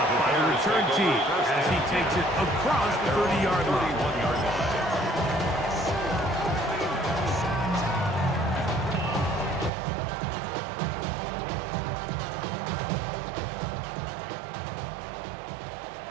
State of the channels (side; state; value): left; drops out; at 9.7 s